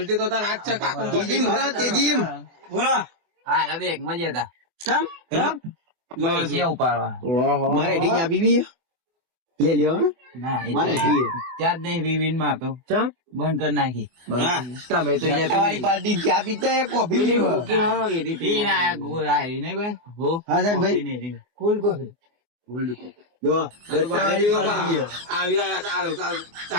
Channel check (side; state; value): left; late; 24 ms